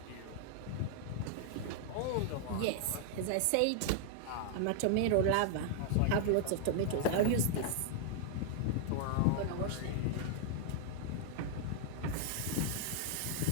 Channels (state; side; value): different; both; correlation -0.01